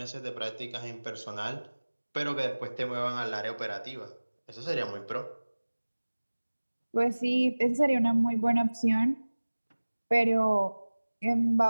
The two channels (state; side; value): inverted; both; correlation -1.00